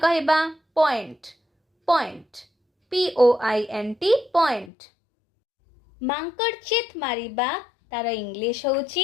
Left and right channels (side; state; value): right; drops out; at 4.7 s